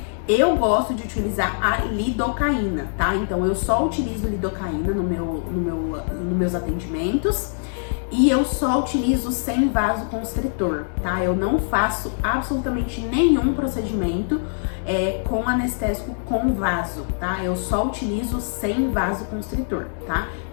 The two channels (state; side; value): silent; right; digital silence